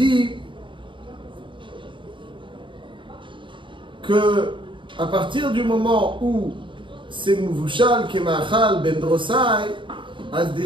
que à partir du moment où c'est Mouvushal, Kemachal, Ben Drosai,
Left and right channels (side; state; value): left; late; 0.24 ms